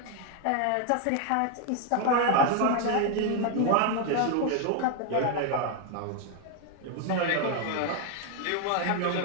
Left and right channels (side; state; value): both; different; correlation 0.01